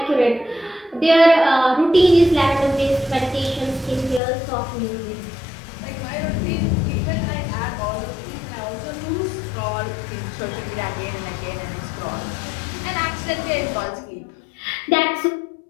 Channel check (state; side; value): drops out; right; at 4.2 s